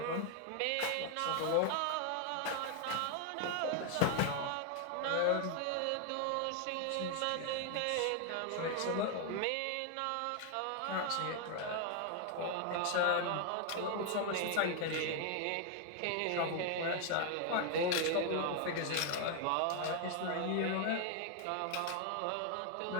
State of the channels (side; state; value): both; different; correlation 0.00